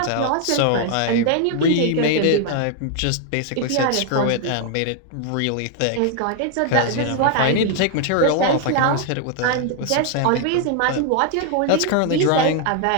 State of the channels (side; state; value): both; different; correlation 0.00